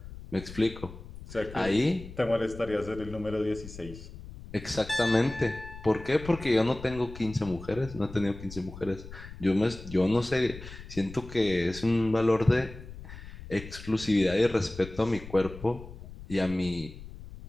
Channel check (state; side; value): noise; left; rumble, 14 dB below the sound